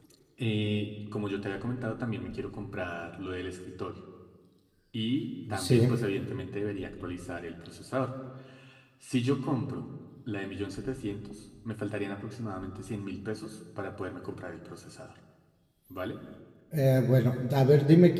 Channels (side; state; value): both; identical; correlation 1.00